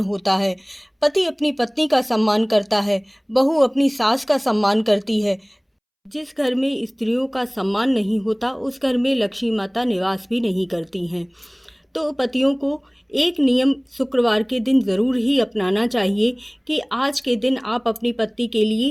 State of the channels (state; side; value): identical; both; correlation 1.00